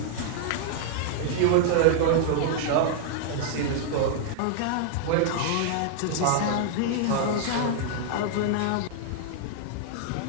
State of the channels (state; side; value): different; both; correlation -0.01